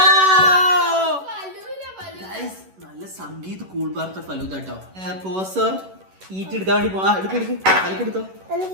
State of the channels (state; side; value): late; left; 11 ms